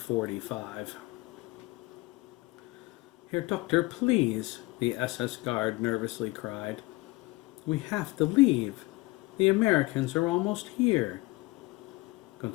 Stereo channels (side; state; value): right; quieter; 22.2 dB